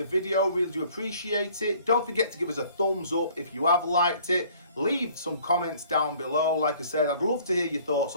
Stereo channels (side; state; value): both; inverted; correlation -0.56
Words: video. Really do appreciate it. Don't forget to give us a thumbs up if you have liked it. Leave some comments down below. Like I said, I'd love to hear your thoughts